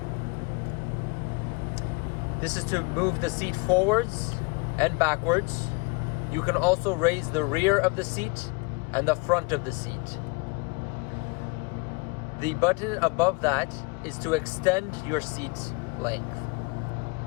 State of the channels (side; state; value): right; quieter; 29.2 dB